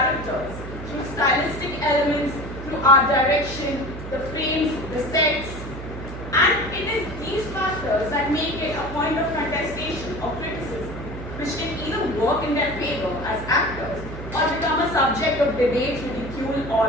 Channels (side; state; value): right; noise; hum, 10 dB below the sound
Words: through stylistic elements, through art direction, the frames, the sets. And it is these factors that make it a point of contestation or criticism, which can either work in their favor as actors or become a subject of debate, ridicule,